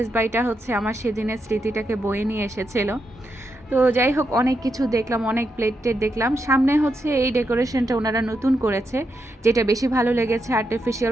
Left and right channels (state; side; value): normal; both; correlation 0.84